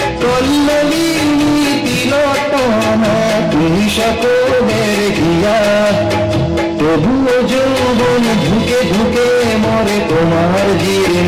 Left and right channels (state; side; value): identical; both; correlation 1.00